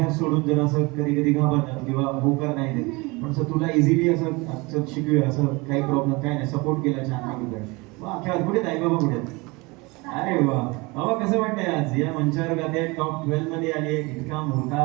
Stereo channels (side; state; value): left; quieter; 25.3 dB